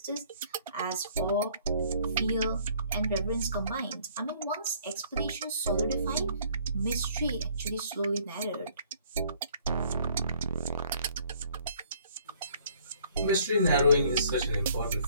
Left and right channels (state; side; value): inverted; both; correlation -0.60